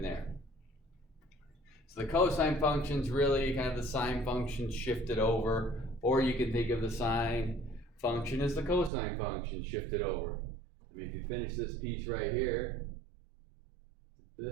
there. So the cosine function's really kind of the sine function shifted over, or you can think of the sine function as the cosine function shifted over. I mean, if you finish this piece right here,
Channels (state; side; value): drops out; left; at 8.9 s